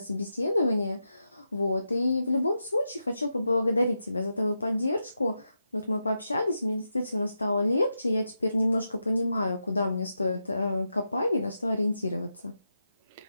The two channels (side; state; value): both; inverted; correlation -0.87